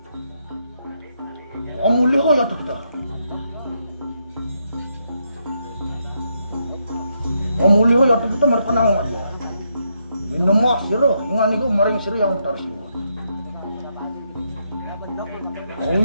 Amuli ko yatu kita. Amuli ko yatu kita mereka nang mana. Minum mak siro ingan ko maring siro yang utar siwa. Oh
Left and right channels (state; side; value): inverted; both; correlation -0.79